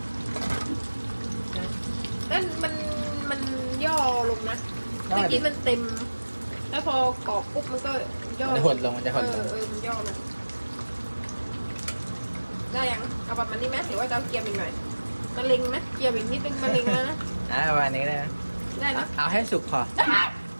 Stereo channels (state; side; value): inverted; both; correlation -1.00